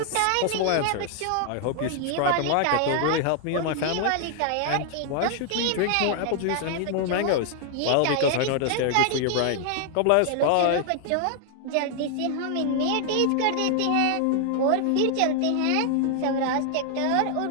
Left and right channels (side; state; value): both; different; correlation 0.00